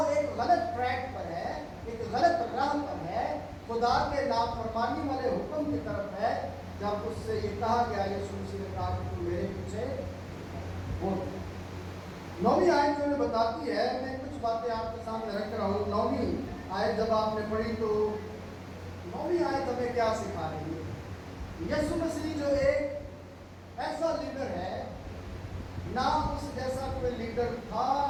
ایک غلط ٹریک پر ہے، ایک غلط راہ پر ہے، خدا کے نافرمانی والے حکم کی طرف ہے۔ جب اس سے یہ کہا گیا، یسوع مسیح نے کہا کہ تم میرے پیچھے بول۔ 9ویں آیت جو بتاتی ہے، میں کچھ باتیں آپ کے سامنے رکھ رہا ہوں۔ 9ویں آیت جب آپ نے پڑھی تو 9ویں آیت ہمیں کیا سکھا رہی ہے؟ یسوع مسیح جو ایک ایسا لیڈر ہے، نہ اس جیسا کوئی لیڈر تھا،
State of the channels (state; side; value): identical; both; correlation 1.00